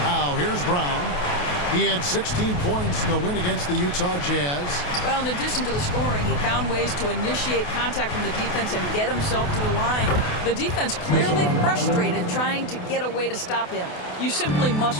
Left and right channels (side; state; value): right; late; 28 ms